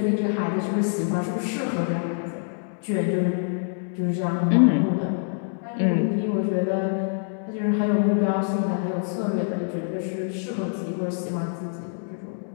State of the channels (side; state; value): right; silent; digital silence